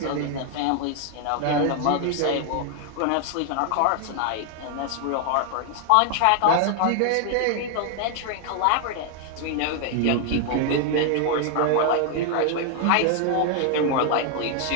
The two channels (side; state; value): both; different; correlation 0.00